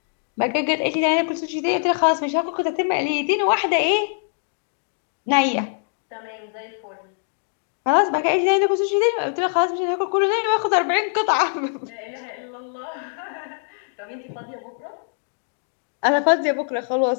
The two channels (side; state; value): right; silent; 63 dB below the other